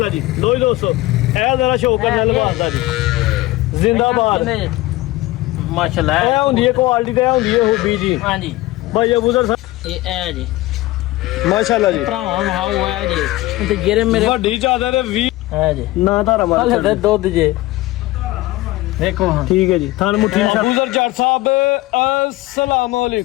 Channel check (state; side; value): quieter; right; 18.5 dB